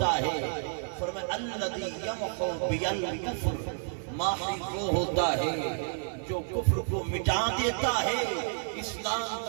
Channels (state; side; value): silent; left; 58 dB below the other